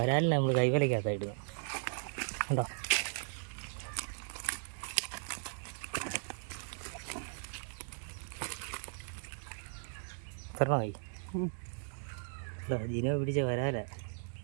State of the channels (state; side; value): silent; left; digital silence